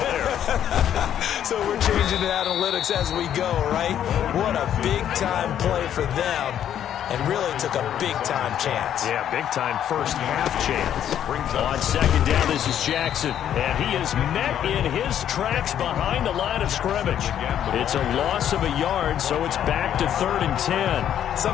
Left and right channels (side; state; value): right; quieter; 10.1 dB